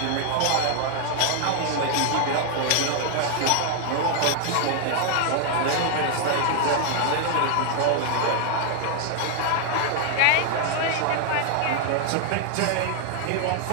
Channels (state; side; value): different; both; correlation 0.00